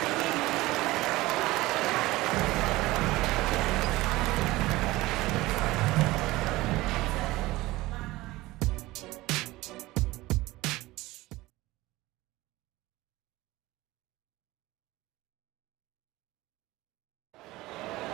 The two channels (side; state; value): left; quieter; 19.1 dB